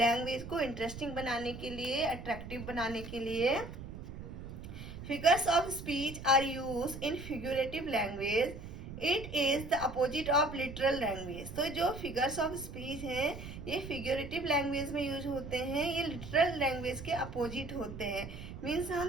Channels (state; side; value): noise; right; rumble, 10 dB below the sound